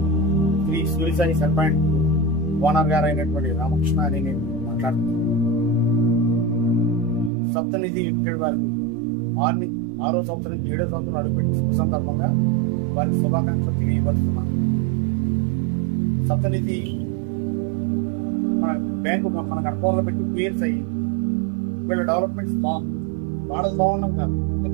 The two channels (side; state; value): left; drops out; at 7.3 s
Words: శ్రీ సూర్యసాయి సర్పాయింట్ ఓనర్ గారు అయినటువంటి రామకృష్ణ అని నేను మాట్లాడుతున్నాను. సప్తనిధి లిమిటెడ్ వారికి 6వ సంవత్సరం నుంచి 7వ సంవత్సరం అడుగుపెట్టి శుభ సందర్భంగా వారికి శుభాకాంక్షలు తెలియపరుస్తున్నాను. సప్తనిధి మన బ్యాంకు మన కడపలో పెట్టి 2 years అయ్యి వీళ్ళ డెవలప్మెంట్స్ బాగుంది. వాళ్ళకి బాగున్నాం కాదు,